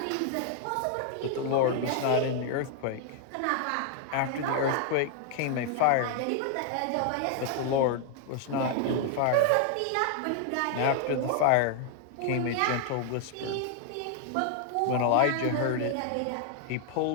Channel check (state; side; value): different; both; correlation 0.00